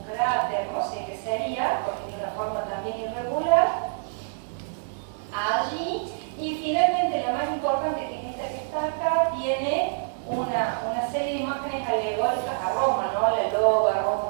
cráter, no sé qué sería, porque tiene una forma también irregular, allí. Y finalmente, la más importante, que es esta que está acá, tiene una serie de imágenes alegóricas a Roma, ¿no? La loba,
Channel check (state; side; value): silent; left; digital silence